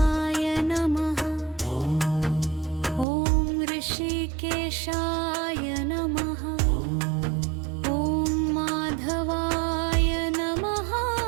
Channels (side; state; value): left; drops out; at 3.1 s